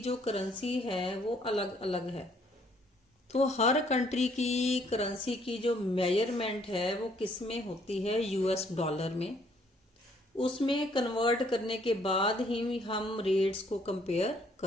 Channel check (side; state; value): both; normal; correlation 0.65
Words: करेंसी है वो अलग अलग है, तो हर कंट्री की करेंसी की जो मेजरमेंट है वो किस में होती है? यूएस डॉलर में। उसमें कन्वर्ट करने के बाद ही हम रेट्स को कंपेयर